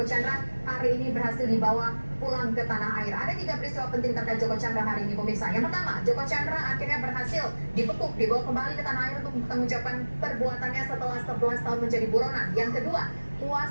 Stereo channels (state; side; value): inverted; both; correlation -1.00